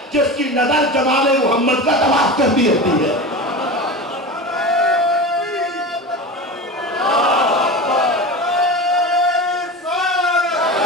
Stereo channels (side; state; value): both; normal; correlation 0.28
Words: جس کی نظر جمال محمد کا طواف کرتی رہتی ہے.